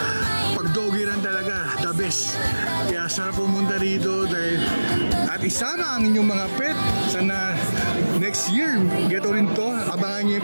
pag doggy run talaga, the best. Kaya sarap pumunta rito dahil, at isama ang inyong mga pet. Sana next year, gato rin to. Abangan nyo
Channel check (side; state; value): both; inverted; correlation -1.00